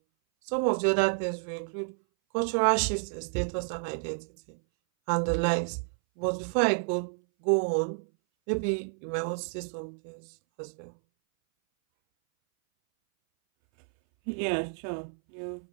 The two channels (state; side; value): silent; left; 58 dB below the other